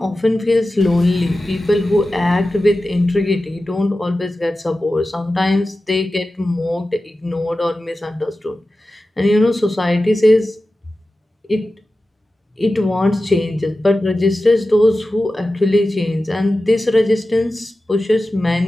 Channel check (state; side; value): normal; both; correlation 0.94